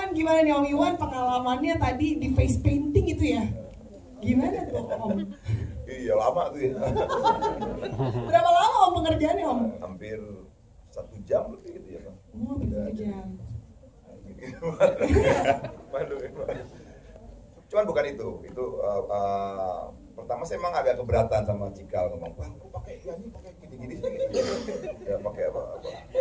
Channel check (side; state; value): both; identical; correlation 1.00